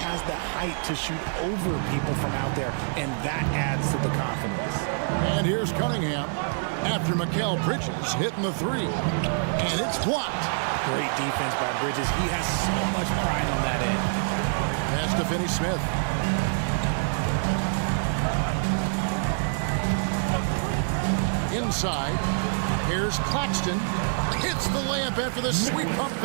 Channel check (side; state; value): left; silent; 60 dB below the other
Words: has the height to shoot over people from out there, and that adds to the confidence. And here's Cunningham after Mikal Bridges hitting the 3. And it's blocked. Great defense by Bridges. He has so much pride on that end. Pass to Finney-Smith. Inside. Here's Claxton. Hits the layup after the sweep pump